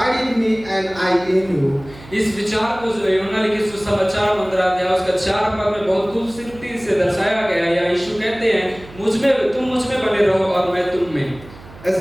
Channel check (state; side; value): noise; right; hum, 20 dB below the sound